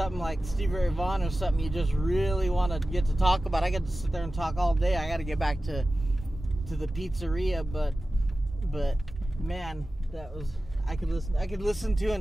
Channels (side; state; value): both; normal; correlation 0.95